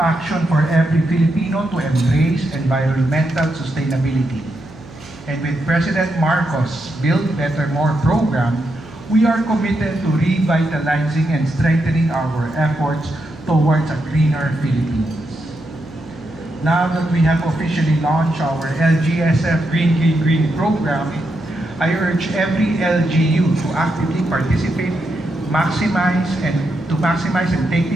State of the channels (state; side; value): noise; right; hum, 21 dB below the sound